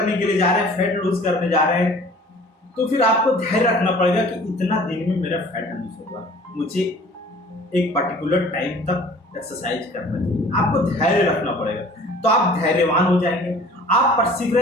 के लिए जा रहे हैं, फैट लूज करने जा रहे हैं, तो फिर आपको धैर्य रखना पड़ेगा कि इतना दिन में मेरा फैट लूज होगा, मुझे एक पर्टिकुलर टाइम तक एक्सरसाइज करना चाहिए। आपको धैर्य रखना पड़ेगा, तो आप धैर्यवान हो जाएंगे, आप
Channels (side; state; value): both; normal; correlation 0.48